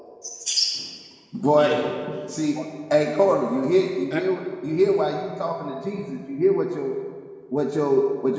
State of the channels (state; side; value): identical; both; correlation 1.00